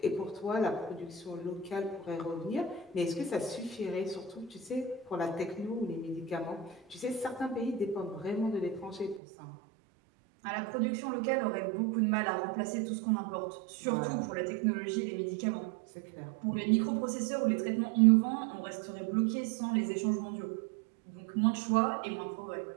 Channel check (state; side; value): drops out; left; at 9.2 s